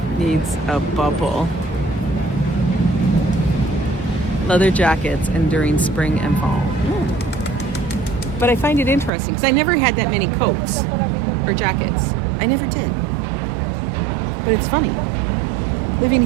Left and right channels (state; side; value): drops out; left; at 9.1 s